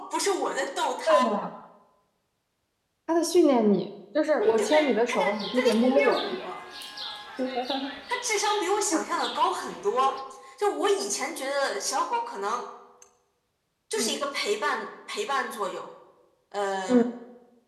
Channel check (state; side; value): identical; both; correlation 1.00